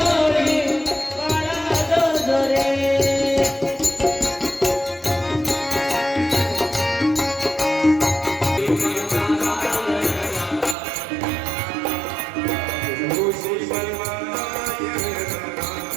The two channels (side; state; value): left; drops out; at 10.8 s